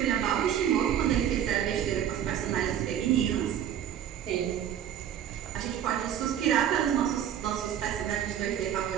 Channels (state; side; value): quieter; left; 9.9 dB